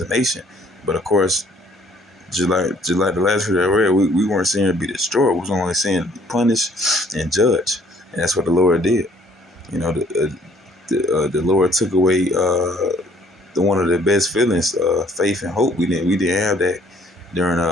a nation. But of course, just like the last video I read, we weren't seeing it be destroyed. We was only seeing it be punished and judged, and that's what the Lord did. You know, the Lord took away one of the best feelings, faith and hope. We didn't have that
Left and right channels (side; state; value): both; normal; correlation 0.60